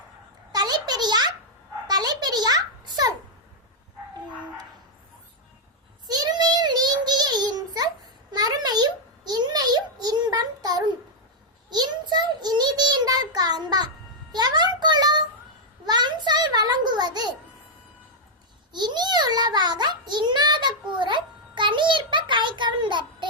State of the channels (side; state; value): both; normal; correlation -0.03